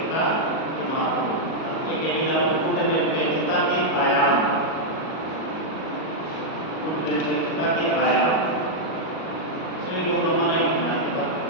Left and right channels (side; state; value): right; late; 37 ms